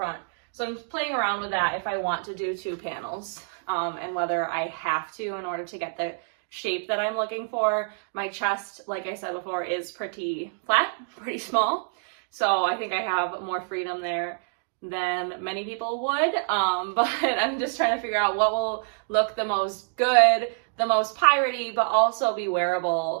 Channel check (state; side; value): silent; left; digital silence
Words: So I'm playing around with that if I want to do 2 panels, and whether I have to in order to get the shape that I'm looking for. My chest, like I said before, is pretty flat, pretty small. So I think I have more freedom there than many people would, but I'm just trying to figure out what will look the most good, the most piratey, but also be